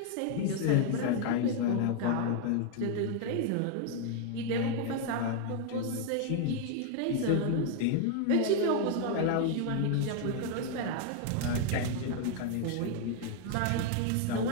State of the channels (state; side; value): different; both; correlation 0.00